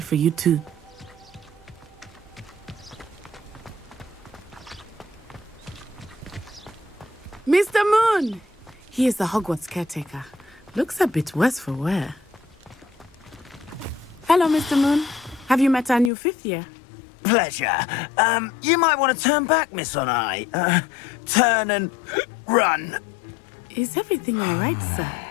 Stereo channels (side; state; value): right; drops out; at 16.1 s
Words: for you too. Mr. Moon! He is the Hogwarts caretaker. Looks a bit worse for wear. Hello, Mr. Moon. Have you met our new fifth year? Pleasure. You might want to turn back, Miss Onai. Turn and run. Is everything all right, sir?